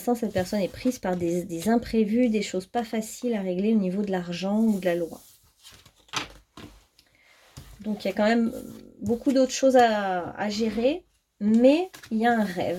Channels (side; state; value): both; identical; correlation 1.00